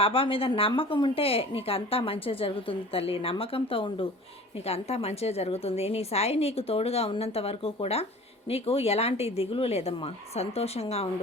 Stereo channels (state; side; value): normal; both; correlation 0.43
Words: మీద నమ్మకం ఉంటే నీకు అంతా మంచిగా జరుగుతుంది తల్లి. నమ్మకంతో ఉండు, నీకు అంతా మంచిగా జరుగుతుంది. నీ సాయి నీకు తోడుగా ఉన్నంత వరకు కూడా నీకు ఎలాంటి దిగులు లేదమ్మా. సంతోషంగా